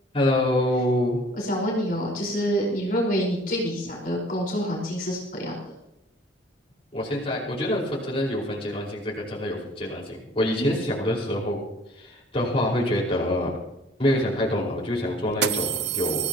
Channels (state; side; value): normal; both; correlation 0.52